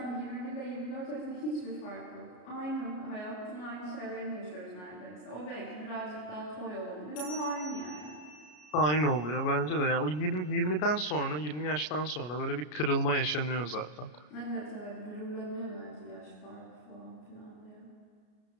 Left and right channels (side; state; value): right; late; 33 ms